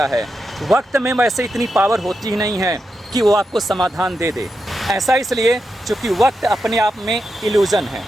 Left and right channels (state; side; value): normal; both; correlation 0.87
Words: है। वक्त में वैसे इतनी पावर होती ही नहीं है कि वो आपको समाधान दे दे। ऐसा इसलिए क्योंकि वक्त अपने आप में इल्यूज़न है।